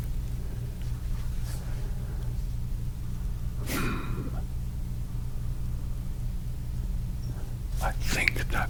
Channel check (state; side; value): identical; both; correlation 1.00